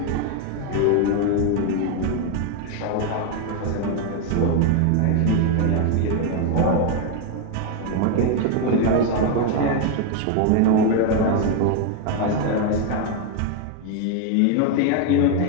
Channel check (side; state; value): both; different; correlation 0.01